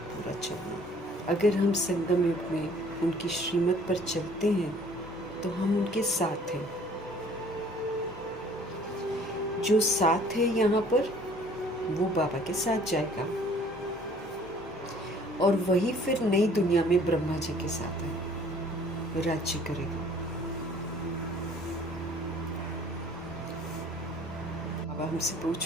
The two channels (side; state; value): both; normal; correlation 0.55